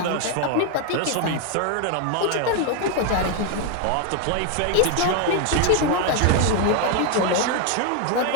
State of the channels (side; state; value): both; different; correlation 0.01